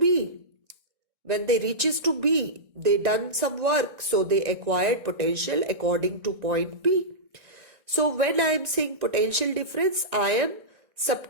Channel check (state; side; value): late; left; 1.9 ms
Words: when they reaches to B, they done some work. So they acquired potential according to point B. So when I am saying potential difference, I am